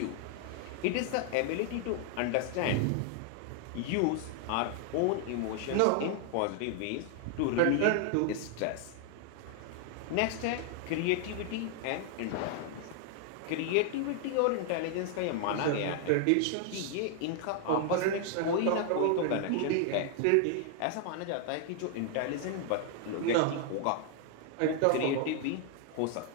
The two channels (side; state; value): both; different; correlation 0.00